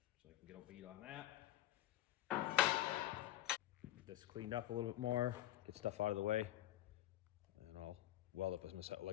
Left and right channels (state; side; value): quieter; right; 14.3 dB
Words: so I can get a bead on that. Get this cleaned up a little bit more, get stuff out of the way. Weld up as my